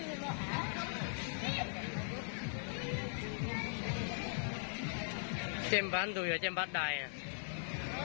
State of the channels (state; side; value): silent; right; digital silence